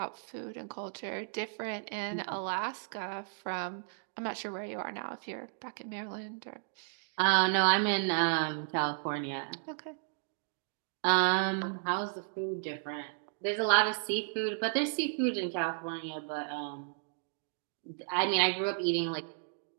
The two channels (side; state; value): left; silent; digital silence